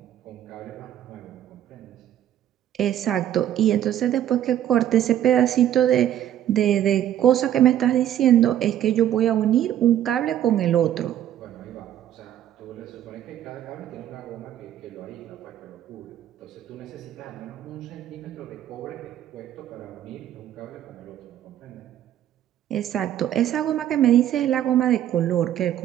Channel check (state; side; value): quieter; left; 11.3 dB